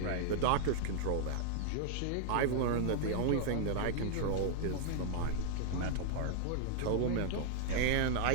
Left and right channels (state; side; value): different; both; correlation -0.01